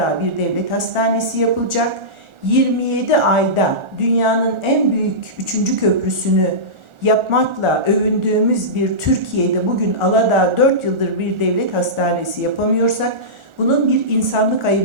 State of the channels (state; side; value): late; left; 1.4 ms